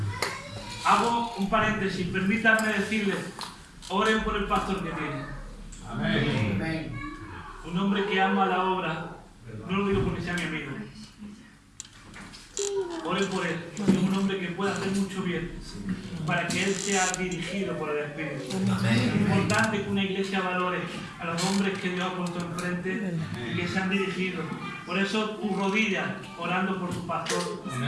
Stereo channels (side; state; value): both; identical; correlation 1.00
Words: Hago un paréntesis, permítanme decirles, oren por el pastor que tiene. Amén. Un hombre que ama la obra, no lo digo porque sea mi amigo. Oren por él, es un hombre que puede hacer mucho bien, para que él sea dirigido por el Espíritu. Es importante que una iglesia valore a los hombres que Dios ha puesto enfrente y que sean dirigidos. Por eso tu rodilla orando por tu pastor,